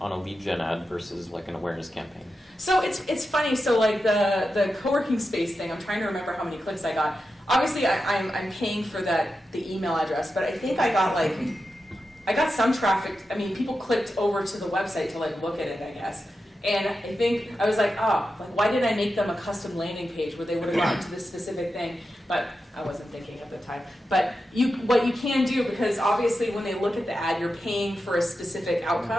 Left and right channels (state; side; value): normal; both; correlation 0.90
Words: lead gen ad versus an awareness campaign? So it's funny. So the co-working space thing, I'm trying to remember how many clicks I got. Obviously, I'm paying for the email address, but I think I got some traffic. I mean, people clicked over to the website to look at it, I guess. And I think I was why did I make them a custom landing page where they would have gotten to this specific thing? But I wasn't thinking at the time. But what you can do, because obviously when they look at the ad, you're paying for a specific